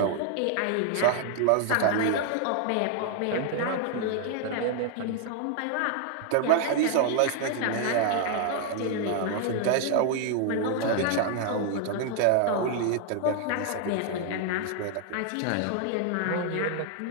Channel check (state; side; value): different; both; correlation 0.00